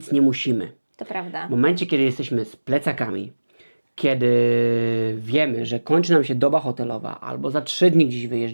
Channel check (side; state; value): both; inverted; correlation -1.00